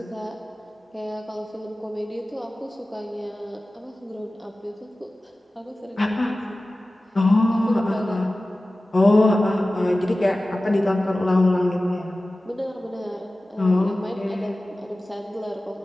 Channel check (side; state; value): both; normal; correlation 0.96